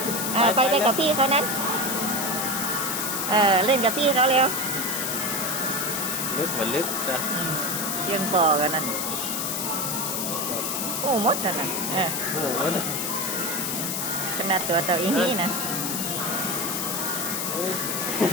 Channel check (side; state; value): left; noise; hiss, 1 dB below the sound